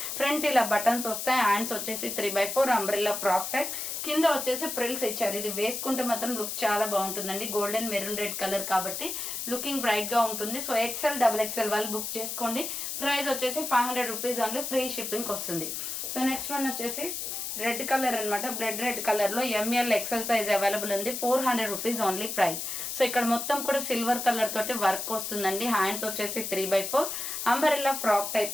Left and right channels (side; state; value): left; noise; hiss, 4 dB below the sound